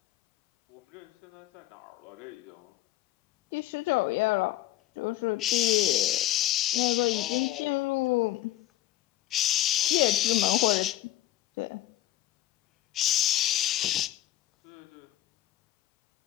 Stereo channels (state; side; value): quieter; right; 14.4 dB